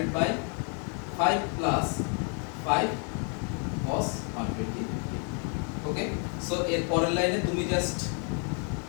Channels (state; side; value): quieter; right; 37.9 dB